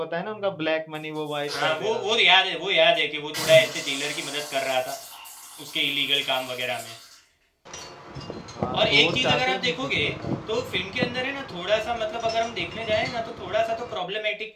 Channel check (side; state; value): both; identical; correlation 1.00